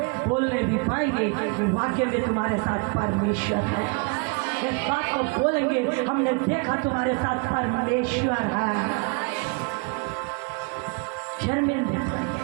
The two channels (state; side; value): quieter; left; 32.9 dB